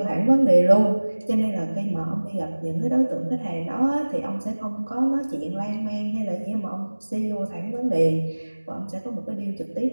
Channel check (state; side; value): inverted; both; correlation -1.00